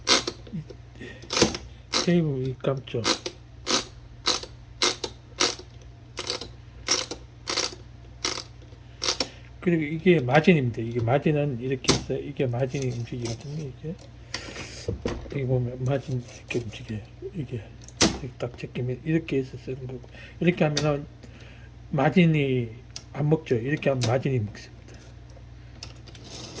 테이프 감죠. 그리고 이게 마진입니다. 이게 마진은 이렇게 해서 이게 마진이 움직이거든요. 이게 여기 보면 마진 이렇게 움직여요. 이게 딱 제끼면 이렇게 해서 쓰는 거고 이렇게 하면은 마진이 안 먹죠. 이렇게 하면 마진이 먹습니다.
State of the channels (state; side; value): identical; both; correlation 1.00